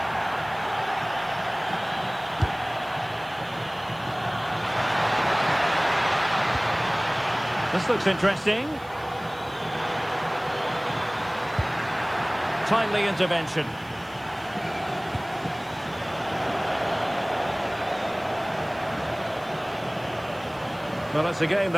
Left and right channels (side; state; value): right; noise; hiss, 26 dB below the sound